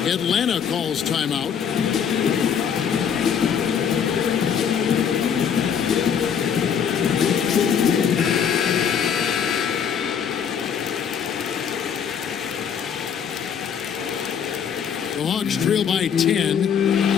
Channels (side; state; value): right; quieter; 7.7 dB